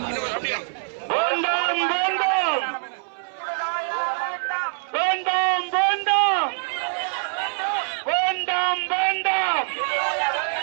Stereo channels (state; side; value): silent; left; 60 dB below the other